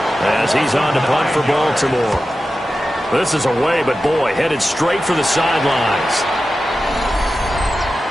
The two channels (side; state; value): both; normal; correlation 0.93